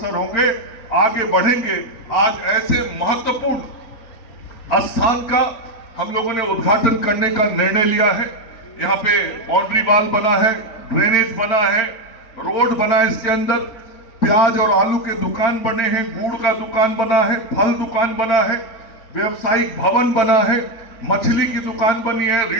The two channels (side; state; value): right; late; 4.4 ms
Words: होंगे, आगे बढ़ेंगे। आज ऐसे महत्वपूर्ण स्थान का हम लोगों ने उद्घाटन करने का निर्णय लिया है। यहाँ पे बाउंड्री वॉल बना है, ड्रेनेज बना है, रोड बना है, इसके अंदर प्याज और आलू के दुकान बने हैं, गुड़ का दुकान बना है, फल दुकान बना है, व्यवसायिक भवन बना है, मछली की दुकान बनी है,